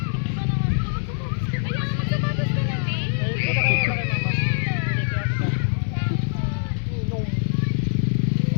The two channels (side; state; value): right; silent; digital silence